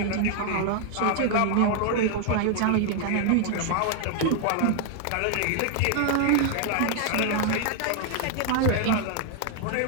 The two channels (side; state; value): both; different; correlation 0.00